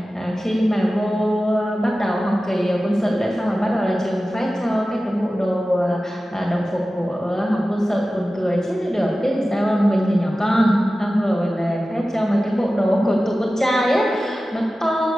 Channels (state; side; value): normal; both; correlation 0.95